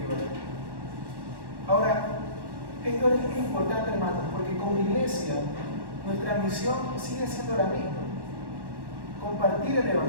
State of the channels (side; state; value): left; late; 1.1 ms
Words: oren. Ahora, esto es importante, hermanos, porque como iglesia nuestra misión sigue siendo la misma: compartir el